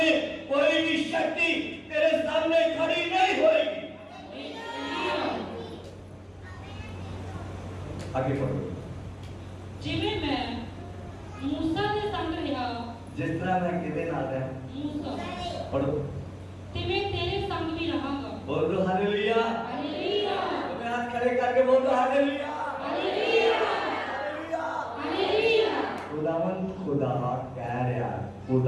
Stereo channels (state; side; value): identical; both; correlation 1.00